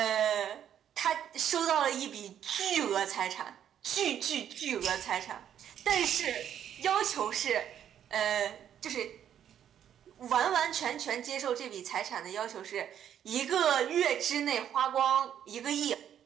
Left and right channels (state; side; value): quieter; left; 9.7 dB